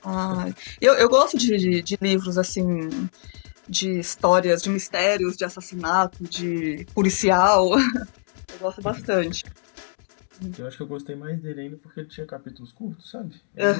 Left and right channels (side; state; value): right; silent; digital silence